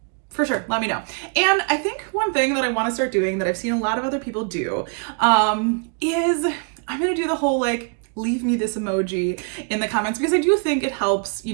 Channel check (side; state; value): left; quieter; 39.3 dB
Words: for sure, let me know. And I think one thing that I want to start doing that I've seen a lot of other people do is I'm going to do the whole like leave me this emoji in the comments, because I do think it helps, you